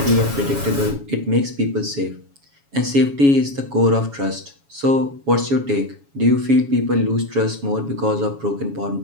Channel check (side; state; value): left; late; 7.2 ms